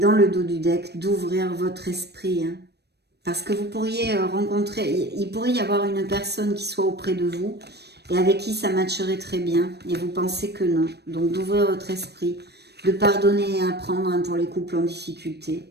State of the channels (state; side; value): late; left; 0.48 ms